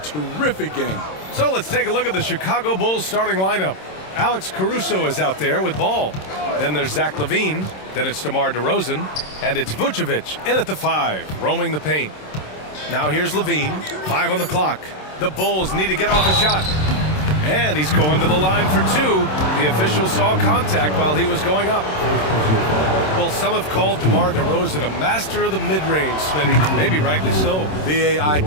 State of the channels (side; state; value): right; late; 27 ms